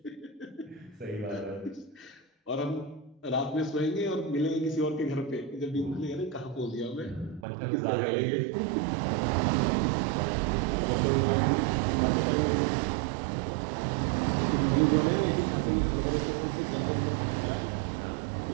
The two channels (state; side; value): drops out; left; at 7.5 s